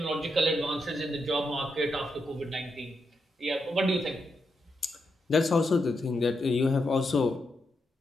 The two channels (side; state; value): both; normal; correlation 0.83